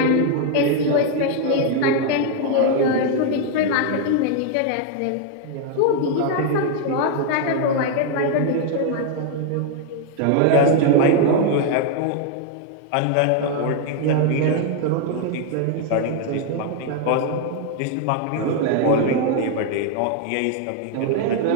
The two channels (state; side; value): different; both; correlation 0.00